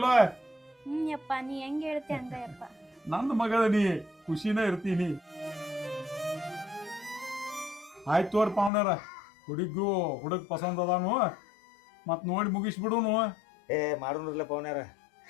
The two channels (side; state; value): right; drops out; at 8.7 s